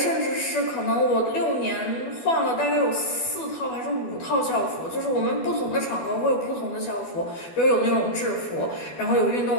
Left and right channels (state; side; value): late; right; 12 ms